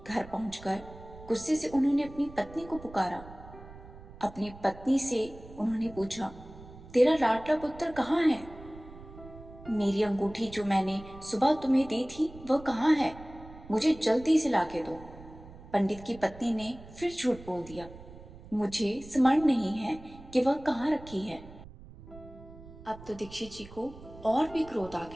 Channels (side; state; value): right; noise; rumble, 17 dB below the sound